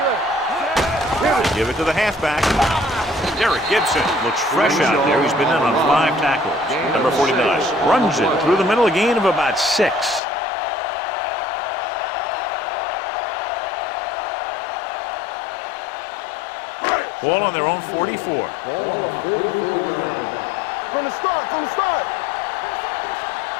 They give it to the halfback. Derek Gibson looks fresh out there. He's been in on 5 tackles. Number 49 runs it through the middle, a gain of about 6. Ball on their own 44. Ball on the 44-yard line. From the start. Do something.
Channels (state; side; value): drops out; right; at 10.2 s